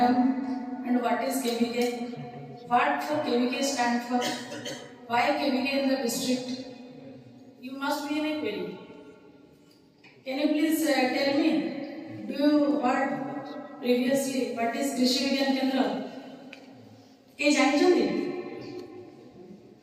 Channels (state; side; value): identical; both; correlation 1.00